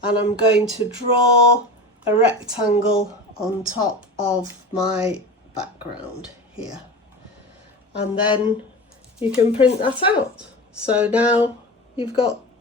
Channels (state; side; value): normal; both; correlation 0.30